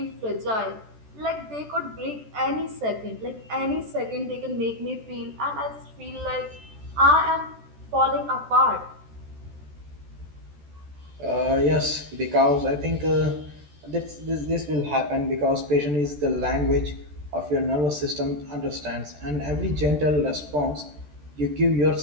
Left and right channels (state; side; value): late; left; 14 ms